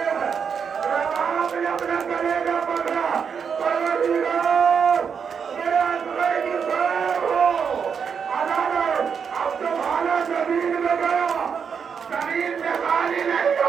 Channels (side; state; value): left; quieter; 6.6 dB